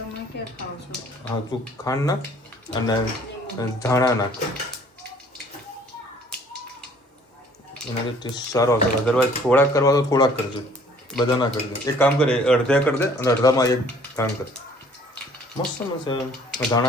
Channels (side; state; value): both; normal; correlation 0.56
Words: ક્યાં ખાવ છો? હા તું ખાંડ નાખ અને ધાણા નાખ, એનાથી ટેસ્ટ સારો આવશે. અદરવાઇઝ થોડાક કરવા તો થોડાક કરજો, બધા ના કરજો. એક કામ કરે અડધે કરી દે અને અડધામાં એક કામ કર, મસ્ત મસ્ત